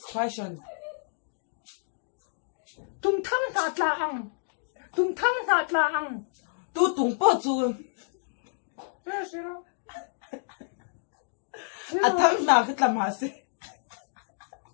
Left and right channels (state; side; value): silent; right; digital silence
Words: question tung thang na tla ang tu tung po chu zero a thang na ka tlam ha se